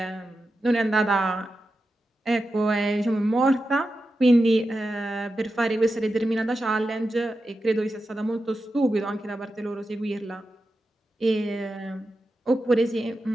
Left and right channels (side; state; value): both; normal; correlation 0.90